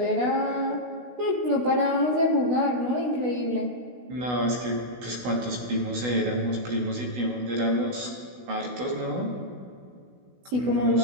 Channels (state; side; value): late; left; 16 ms